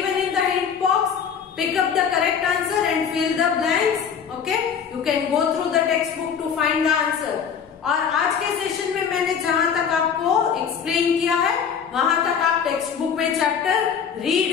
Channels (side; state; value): right; quieter; 7.2 dB